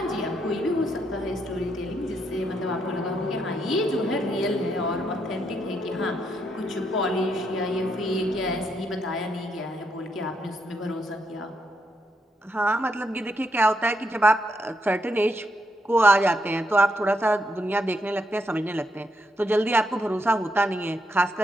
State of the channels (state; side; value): normal; both; correlation 0.78